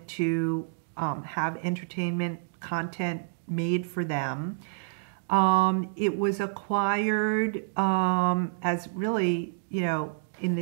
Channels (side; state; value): left; silent; digital silence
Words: to have entertainment content made for them. It was acquired as really, in